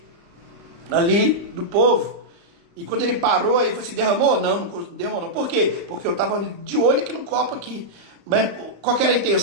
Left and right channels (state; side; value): late; left; 35 ms